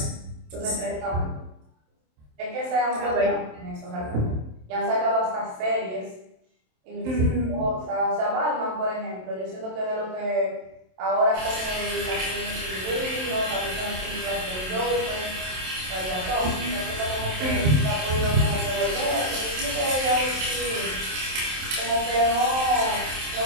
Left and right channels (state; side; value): late; left; 27 ms